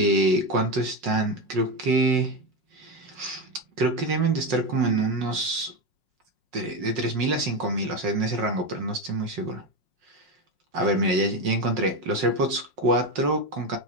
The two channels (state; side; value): late; left; 5.5 ms